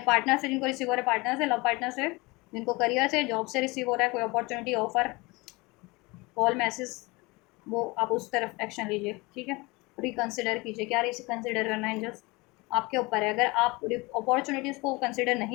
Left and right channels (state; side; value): quieter; right; 24.4 dB